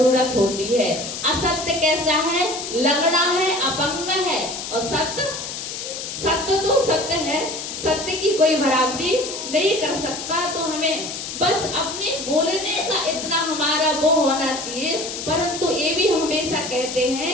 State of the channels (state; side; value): noise; left; hiss, 7 dB below the sound